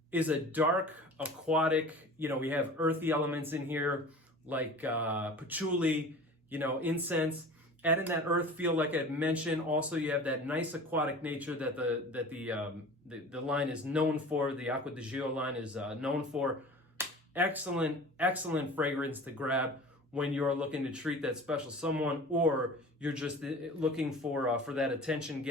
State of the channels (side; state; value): both; normal; correlation 0.40